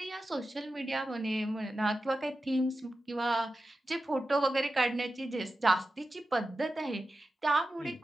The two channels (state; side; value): normal; both; correlation 0.92